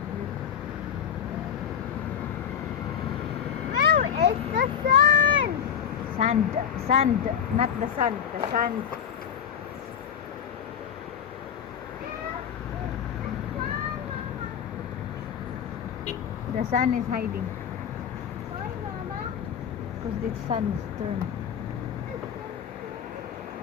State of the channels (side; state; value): right; quieter; 8.1 dB